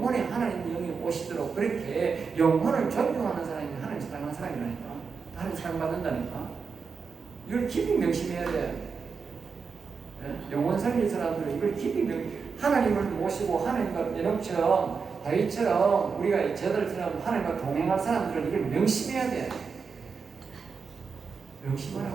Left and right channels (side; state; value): left; quieter; 5.4 dB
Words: 하나님 영이 오시도록 그렇게 영혼을 존중하는 사람이 하나님 사랑하는 사람이라니까. 하나님 사랑받는다니까. 이걸 깊이 명심해야 돼. 영혼 살릴 사람들은 이걸 깊이 하나님을 모시고 하나님과 연합처럼 다윗처럼 우리가 저들처럼 하나님과 동행할 사람들은 이걸 명심해야 돼.